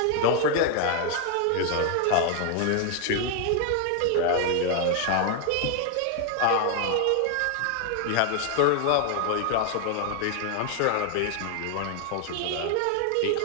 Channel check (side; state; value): both; different; correlation 0.00